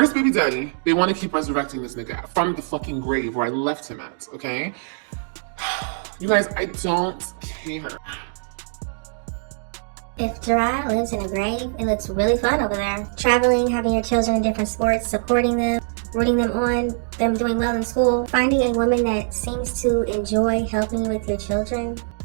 baby daddy, they want to keep resurrecting this nigga from the fucking grave where I left him at, okay? You guys, I don't care. If Jerrod lives in a grave, it looks really fun over there. Traveling, having your children in different sports, supporting them, rooting them on, them doing well in school, finding a woman that seems to enjoy helping you with your children.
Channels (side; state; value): left; silent; digital silence